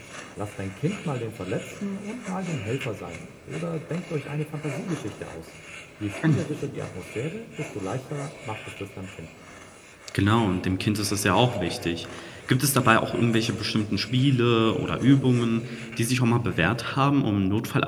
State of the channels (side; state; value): both; identical; correlation 1.00